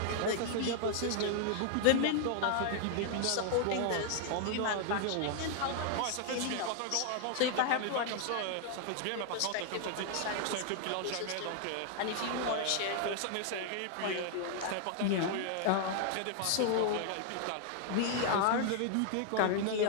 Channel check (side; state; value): both; different; correlation 0.00